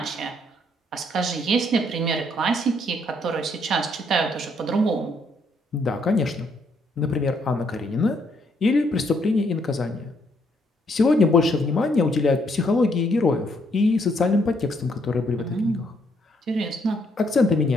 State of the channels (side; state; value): both; normal; correlation 0.71